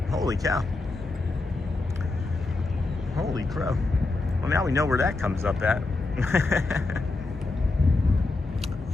Holy cow. Holy crow. Well, now we know where that comes up at.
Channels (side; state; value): right; quieter; 3.4 dB